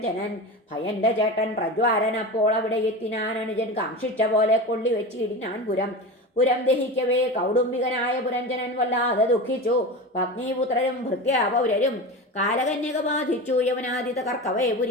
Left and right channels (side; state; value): both; normal; correlation 0.27